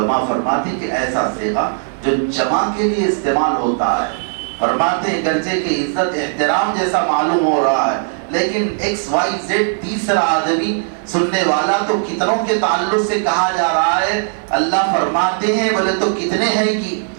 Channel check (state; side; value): silent; left; 56 dB below the other